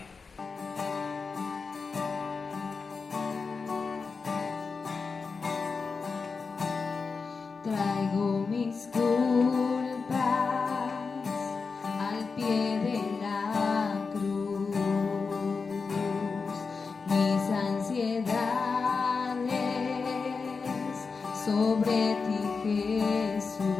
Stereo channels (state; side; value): quieter; right; 4.8 dB